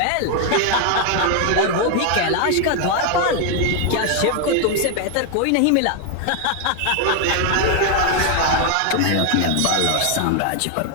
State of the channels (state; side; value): different; both; correlation 0.00